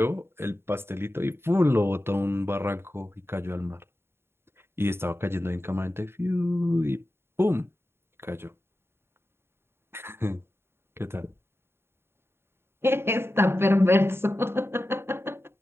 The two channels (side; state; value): left; late; 0.11 ms